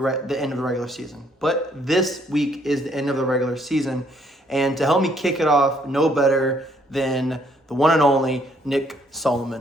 end of the regular season. But this week is the end of the regular season. And to help me kick it off, no better than the one and only Nick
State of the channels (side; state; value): both; normal; correlation 0.67